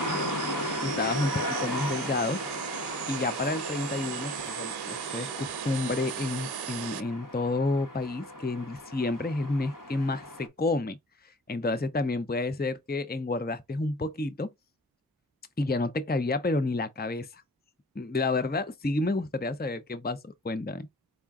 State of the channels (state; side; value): normal; both; correlation 0.46